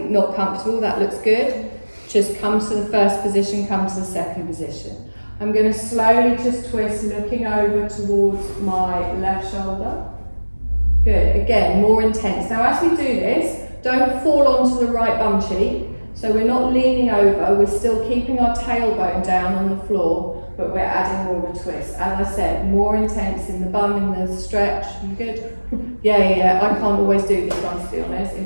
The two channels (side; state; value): both; inverted; correlation -1.00